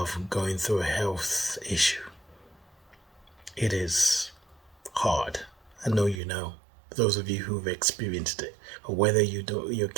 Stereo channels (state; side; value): drops out; left; at 6.2 s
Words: going through a health issue, it is hard. I know you know. Those of you who've experienced it, or whether you're